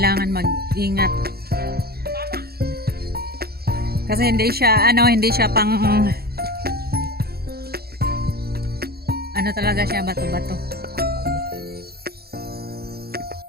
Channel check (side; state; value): left; late; 0.45 ms